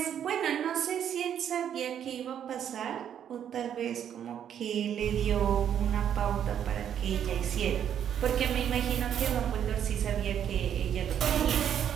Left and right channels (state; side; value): quieter; left; 9.3 dB